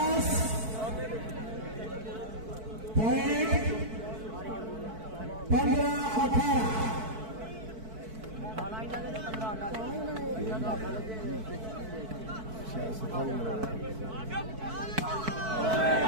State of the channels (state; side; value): late; left; 4.6 ms